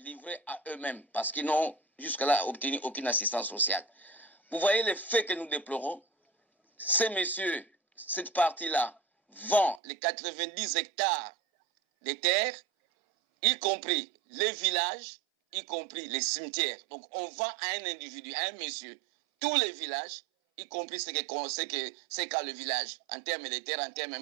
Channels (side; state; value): left; drops out; at 9.8 s